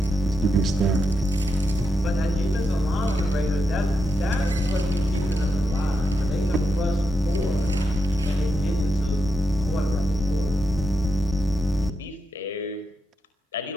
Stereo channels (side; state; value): both; normal; correlation 0.85